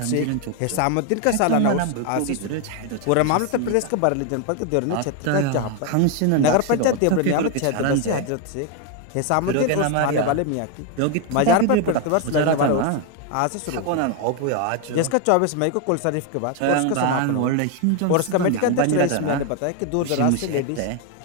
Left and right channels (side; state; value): both; different; correlation 0.01